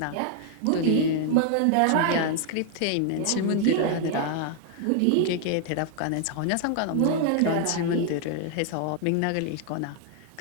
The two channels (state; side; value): different; both; correlation 0.00